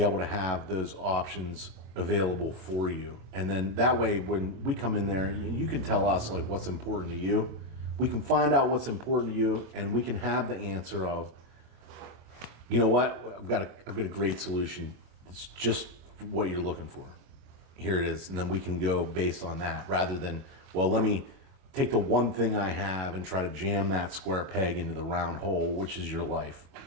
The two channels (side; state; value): left; late; 25 ms